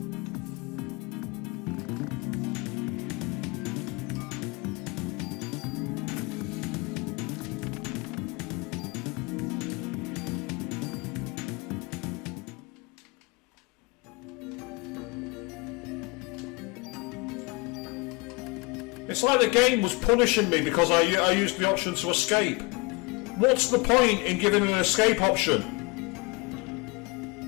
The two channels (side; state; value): right; quieter; 26.9 dB